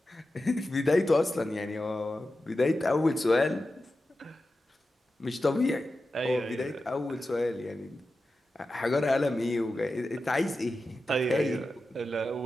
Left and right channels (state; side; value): normal; both; correlation 0.92